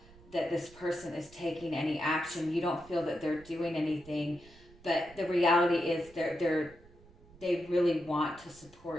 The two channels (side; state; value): right; noise; rumble, 24 dB below the sound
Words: that this person is taking any action. You don't feel that they're doing anything. But the reality is they really want to